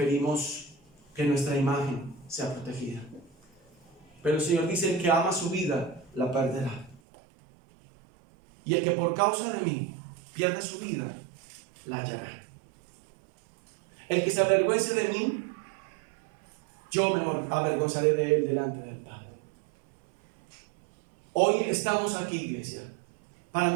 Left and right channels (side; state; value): left; drops out; at 7.0 s